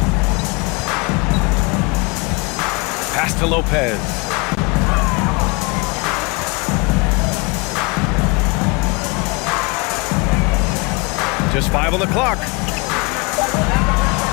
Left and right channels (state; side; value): quieter; right; 29.1 dB